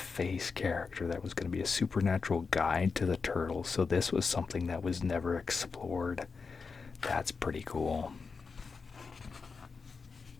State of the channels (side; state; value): right; quieter; 5.0 dB